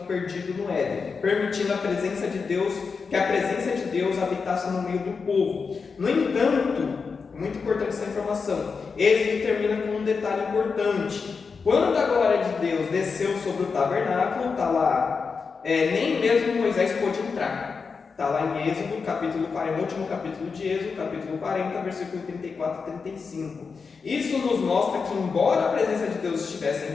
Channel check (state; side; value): quieter; right; 5.1 dB